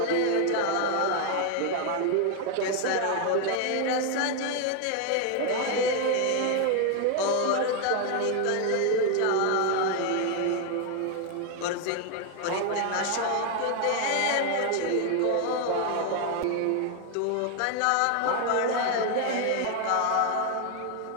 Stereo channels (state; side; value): different; both; correlation 0.01